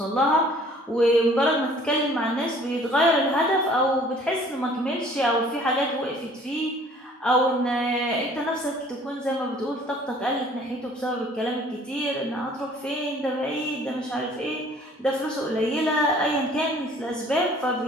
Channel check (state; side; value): normal; both; correlation 0.54